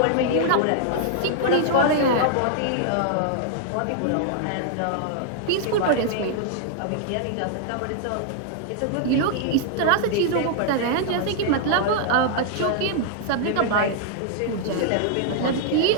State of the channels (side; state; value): both; different; correlation -0.01